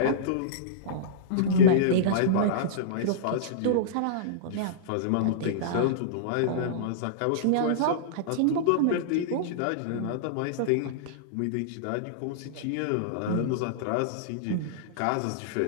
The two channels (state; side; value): different; both; correlation -0.03